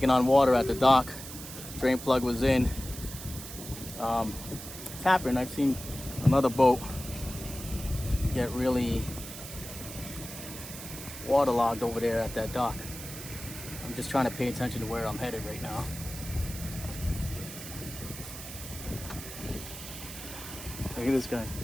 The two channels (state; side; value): noise; right; hiss, 11 dB below the sound